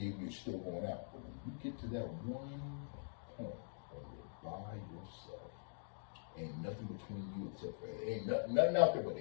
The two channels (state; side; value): silent; right; digital silence